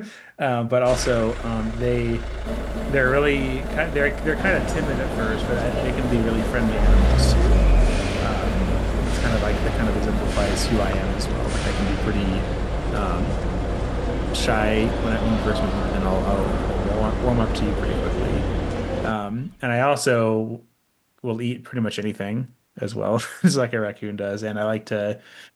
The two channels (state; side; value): identical; both; correlation 1.00